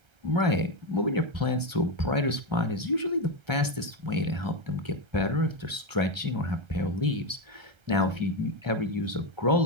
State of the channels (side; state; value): left; late; 1.3 ms